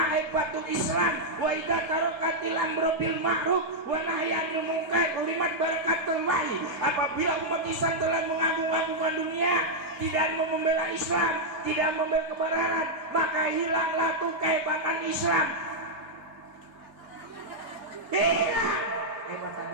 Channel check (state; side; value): late; left; 3.3 ms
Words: aibatul Islam wa idza tarakatil amru bil ma'ruf wa nahyanil munkar ulimat barakatul lahi. Apabila umat Islam telah mengagung-agungkan dunia, tidak mau membela Islam, tidak membela kebenaran, maka hilanglah tuh kehebatan Islam. Hilang kehebatan